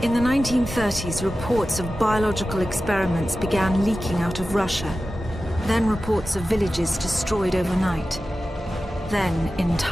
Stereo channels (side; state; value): both; normal; correlation 0.94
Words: In the 1930s, reports of biological experiments began leaking out of Russia. Then reports of villages destroyed overnight. Then